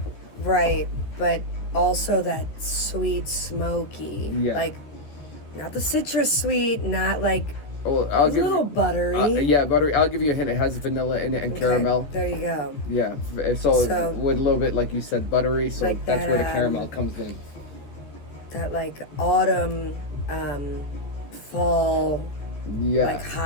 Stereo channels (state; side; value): late; right; 14 ms